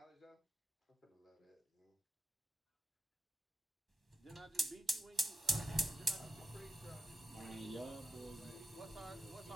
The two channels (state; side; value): normal; both; correlation 0.88